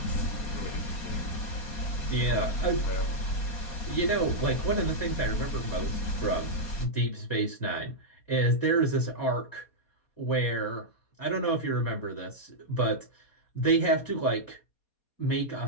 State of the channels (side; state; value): right; late; 4.2 ms